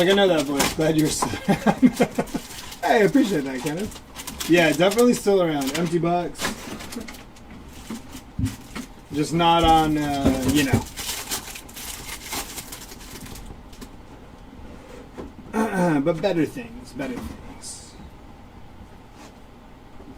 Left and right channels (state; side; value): identical; both; correlation 1.00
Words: I know that voice. Glad you're still around. Hey, I appreciate that, Kenneth. Yeah, definitely still around. Empty box. Just not on, you know. But better things, better things.